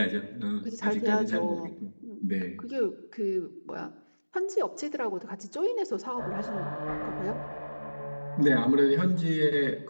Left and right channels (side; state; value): both; inverted; correlation -1.00